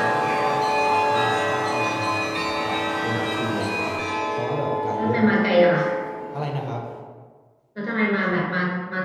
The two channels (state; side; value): identical; both; correlation 1.00